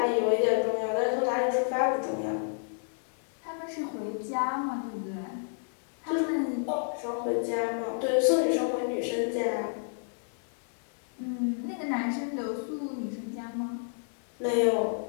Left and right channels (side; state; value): right; silent; 58 dB below the other